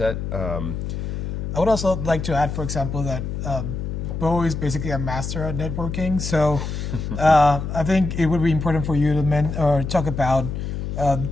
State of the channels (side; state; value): left; noise; hum, 4 dB below the sound